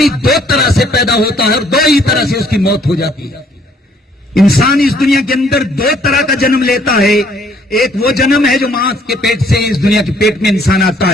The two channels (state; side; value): normal; both; correlation 0.63